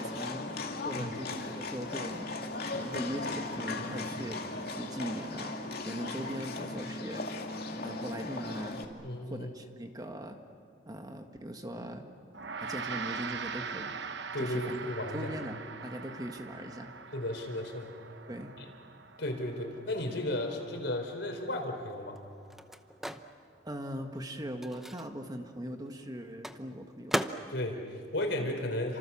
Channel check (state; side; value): normal; both; correlation 0.37